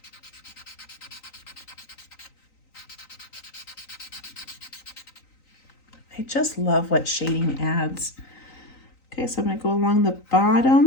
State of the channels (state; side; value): late; right; 3.9 ms